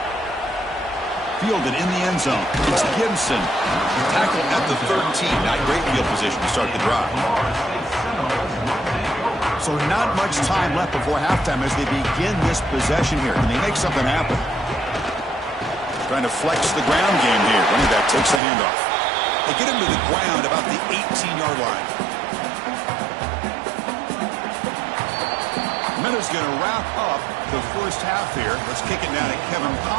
Fielded in the end zone. It's Gibson. Tackle at the 13. Not great field position to start the drive. So not much time left before halftime as they begin this possession here. Can they make something happen? Trying to flex the ground game here. Running back takes the handoff. They get him to the ground about the 18-yard line. Minutes going to wrap up the first half here. Let's kick it down to Kevin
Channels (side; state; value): left; drops out; at 18.4 s